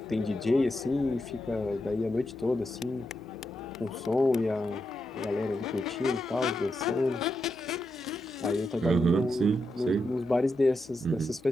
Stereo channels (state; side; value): noise; right; hum, 28 dB below the sound